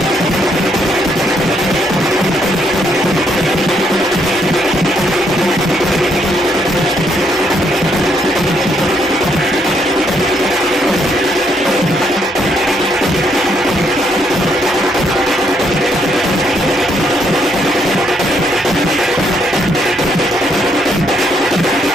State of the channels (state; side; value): normal; both; correlation 0.73